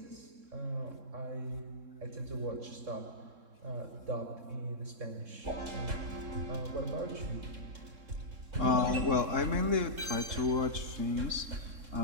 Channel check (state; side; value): late; left; 3.7 ms